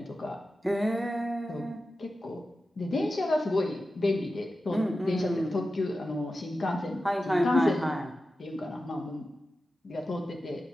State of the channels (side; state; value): both; normal; correlation 0.93